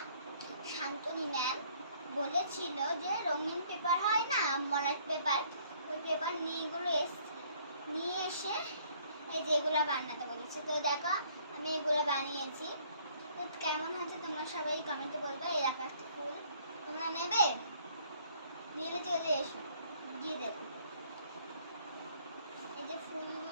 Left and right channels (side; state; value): both; inverted; correlation -0.61